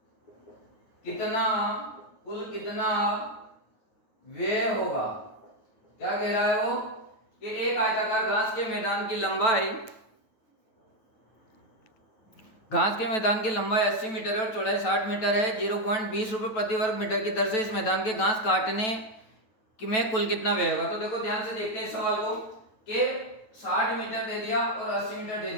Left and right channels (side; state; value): right; late; 9.2 ms